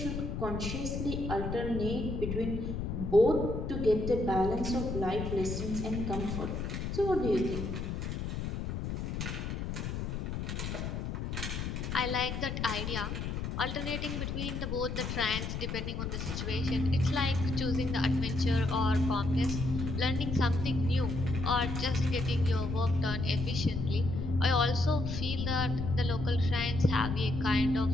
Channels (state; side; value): noise; left; rumble, 3 dB below the sound